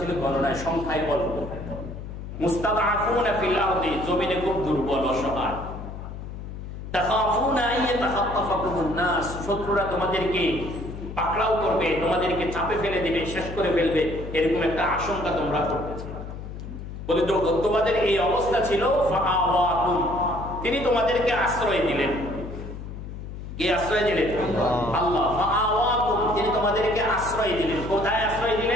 গণনায় সংখ্যায় অল্প, মুস্তাদআফুনা ফিল আরদি, জমিনে খুব দুর্বল অসহায়, তাখাফুনা আন ইয়াতাখাত্তাফাকুমুন নাস, শত্রুরা তোমাদেরকে পাকড়াও করবে, তোমাদেরকে চাপে ফেলে দিবে, শেষ করে ফেলবে, এরকম একটা আশঙ্কা তোমরা করতেছিলে। বলে তোমাদের এই অবস্থা ছিল, ফাআওয়াকুম, তিনি তোমাদেরকে আশ্রয় দিলেন। কে আশ্রয় দিলেন? আল্লাহ। ফাআওয়াকুম, তিনি তোমাদেরকে আশ্রয় দিলেন। কোথায় আশ্রয়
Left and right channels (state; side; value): noise; left; hum, 10 dB below the sound